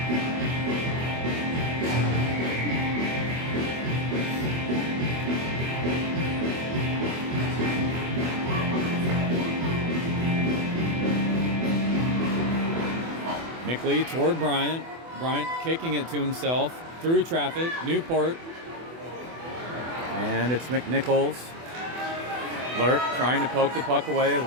Mickley toward Bryant. Bryant kicking it to himself through traffic. Newport. And it's McNichols. Lurk trying to poke the puck away.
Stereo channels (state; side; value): late; left; 24 ms